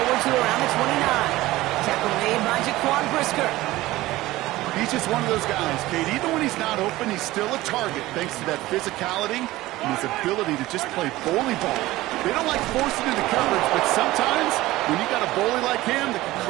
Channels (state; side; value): quieter; left; 17.6 dB